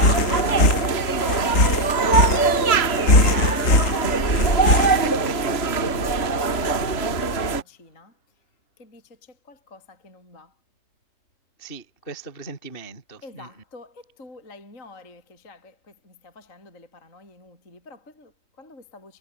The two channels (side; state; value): right; late; 3.0 ms